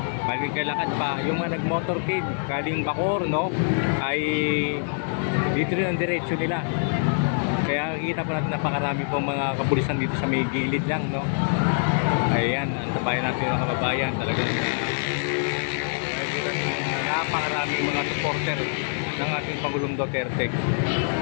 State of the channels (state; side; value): silent; right; 62 dB below the other